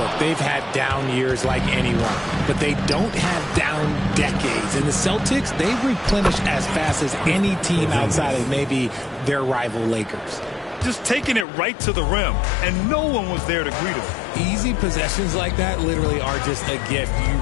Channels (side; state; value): right; drops out; at 11.5 s